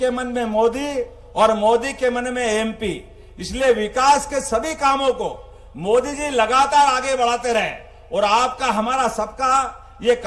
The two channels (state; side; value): identical; both; correlation 1.00